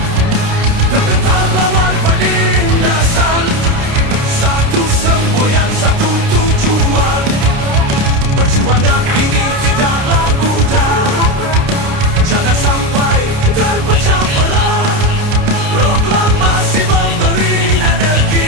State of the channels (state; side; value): late; left; 29 ms